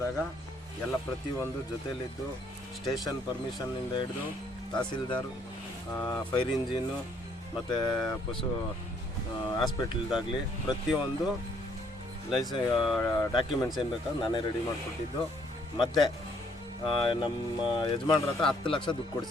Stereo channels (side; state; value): both; normal; correlation 0.66